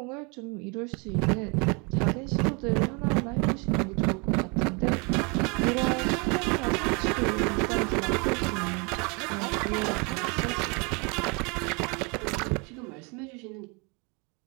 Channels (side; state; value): left; quieter; 31.3 dB